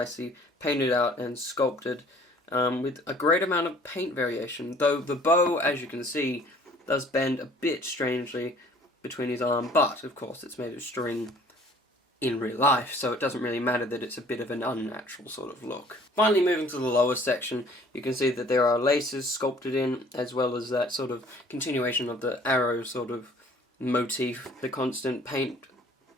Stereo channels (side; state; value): both; normal; correlation 0.54